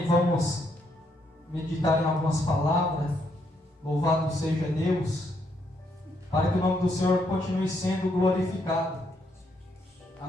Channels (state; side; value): normal; both; correlation 0.75